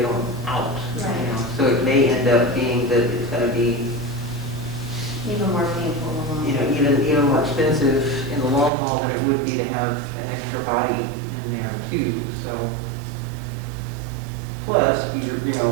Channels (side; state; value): left; drops out; at 8.7 s